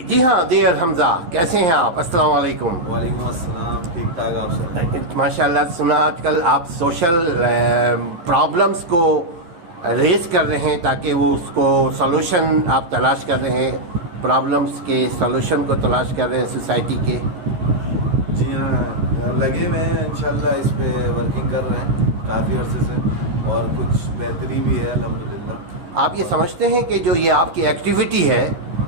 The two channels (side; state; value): left; late; 12 ms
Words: جی ہاں دیر حمزہ، کیسے ہیں آپ؟ السلام علیکم۔ وعلیکم السلام، ٹھیک ٹھاک آپ سے؟ ماشاء اللہ، سنا آج کل آپ سوشل پرابلمس کو ریز کر رہے ہیں تاکہ وہ اس کو سولوشن آپ تلاش کر رہے ہیں، پرابلمس کے سولوشن کو تلاش کر رہے ہیں سوسائٹی کے۔ جی ہاں، لگے ہوئے ہیں انشاءاللہ، اس پہ ورکنگ کر رہے ہیں کافی عرصے سے، اور کچھ بہتری بھی ہے الحمدللہ۔ آپ یہ سمجھتے ہیں کہ جو یہ آپ کی ایکٹیویٹی ہے